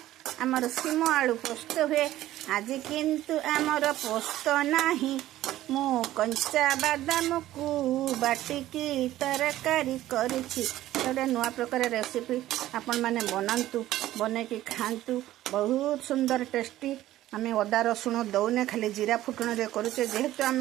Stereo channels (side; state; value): left; quieter; 14.5 dB